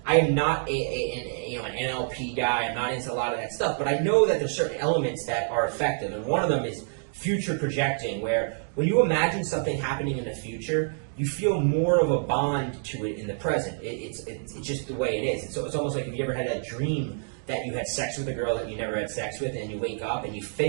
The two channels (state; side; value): silent; left; 60 dB below the other